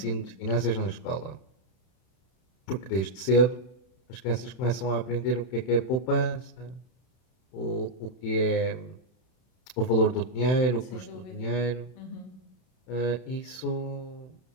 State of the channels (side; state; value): right; late; 31 ms